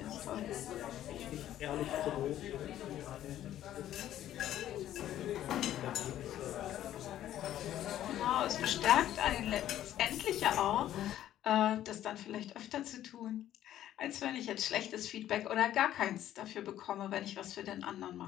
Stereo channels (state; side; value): quieter; right; 12.3 dB